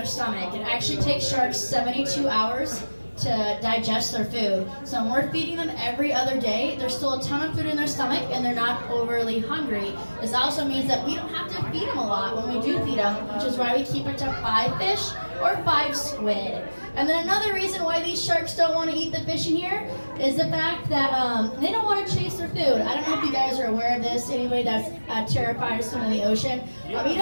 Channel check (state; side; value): inverted; both; correlation -1.00